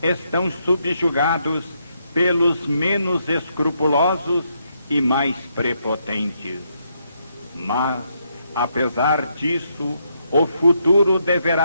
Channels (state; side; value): inverted; both; correlation -0.77